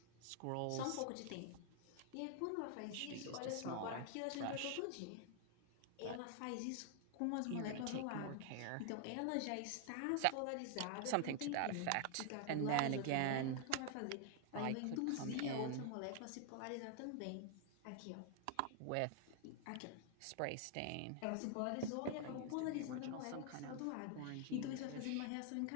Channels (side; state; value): both; different; correlation 0.00